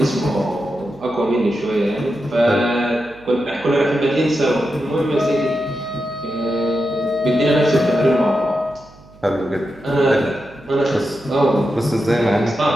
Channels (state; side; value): noise; right; hum, 24 dB below the sound